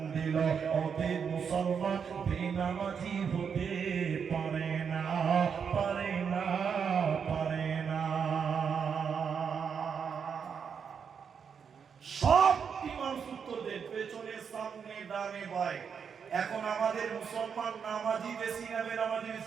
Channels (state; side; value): quieter; left; 6.7 dB